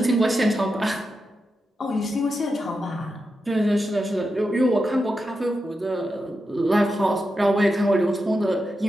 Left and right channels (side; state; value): both; normal; correlation 0.88